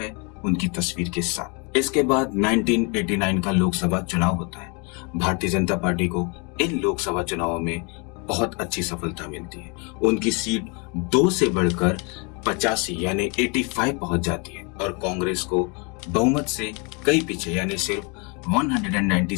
उनकी तस्वीर के साथ। इसके बाद 1989 का लोकसभा चुनाव होता है। भारतीय जनता पार्टी को इन लोकसभा चुनावों में बहुत अच्छी सफलता मिलती है। उनकी सीट 2 से बढ़कर 85 यानी 85 पहुंच जाती है और कांग्रेस को बहुमत से कई पीछे यानी सिर्फ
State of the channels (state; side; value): quieter; right; 32.6 dB